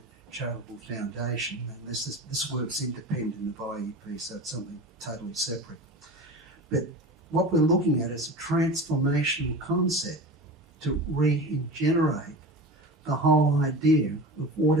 Charitable Foundation, and this work's independent of IEP, so it's something totally separate. But what we're looking at is a transformational concept to regenerate the whole idea of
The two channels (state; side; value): normal; both; correlation 0.32